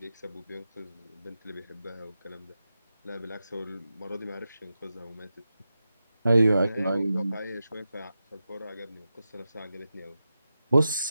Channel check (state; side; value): inverted; both; correlation -0.90